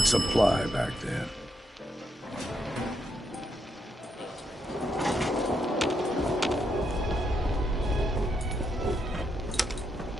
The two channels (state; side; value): normal; both; correlation 0.80